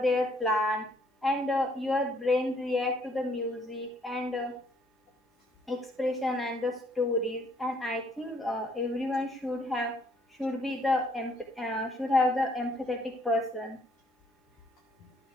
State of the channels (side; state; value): both; normal; correlation 0.65